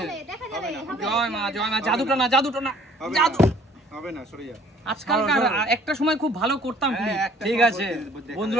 জয় মা। জাদুটা না জাদু হবে না, সরে যা। আজকালকার একটা সময় খুব ভালো করতাম। ঠিক আছে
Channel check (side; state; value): both; normal; correlation 0.56